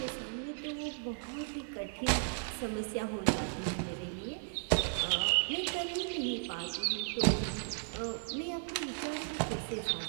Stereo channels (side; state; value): left; silent; digital silence